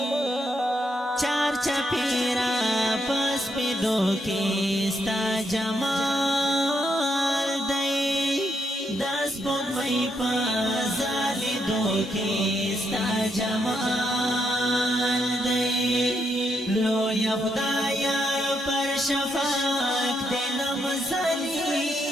چار چپیرا پس پیدو کی ستا جمال دی دس بون مئی پازالی دو کی ستا جمال دی لو یا خدایا پر شفاق دلم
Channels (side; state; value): both; normal; correlation 0.78